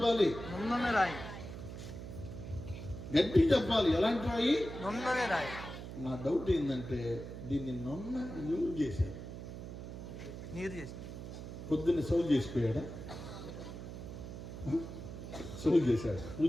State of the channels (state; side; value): noise; right; hum, 9 dB below the sound